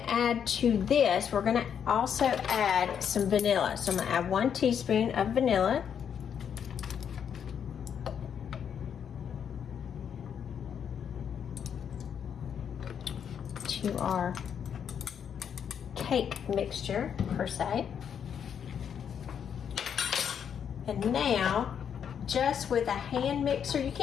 add to this, we're gonna also add some vanilla. So I'm gonna add 1 teaspoon of vanilla. To our cake mixture per se. And now, just with a hand mixer, you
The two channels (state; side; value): quieter; right; 8.0 dB